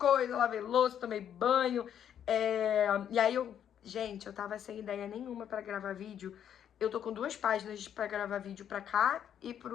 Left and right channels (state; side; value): quieter; right; 9.4 dB